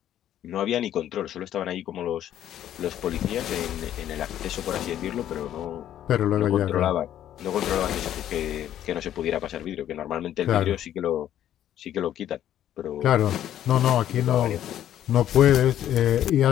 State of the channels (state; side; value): quieter; right; 11.4 dB